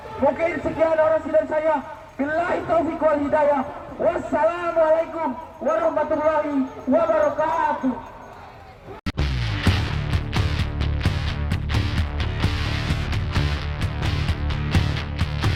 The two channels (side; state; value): both; identical; correlation 1.00